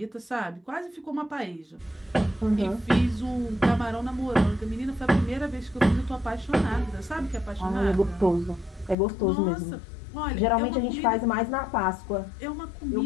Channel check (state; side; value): drops out; right; at 9.0 s